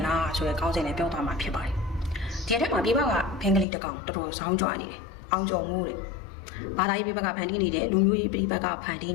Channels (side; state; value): right; drops out; at 3.7 s